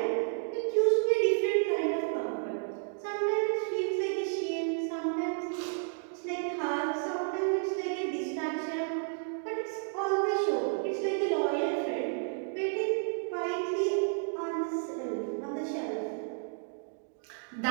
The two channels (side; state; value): left; silent; 57 dB below the other